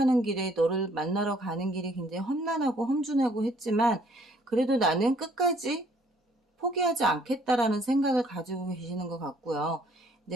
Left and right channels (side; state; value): both; normal; correlation 0.62